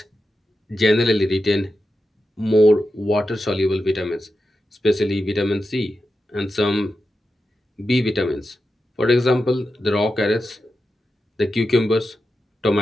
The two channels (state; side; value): normal; both; correlation 0.90